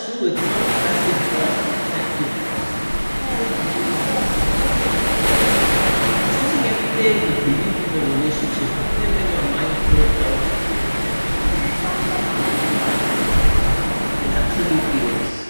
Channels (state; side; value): inverted; both; correlation -1.00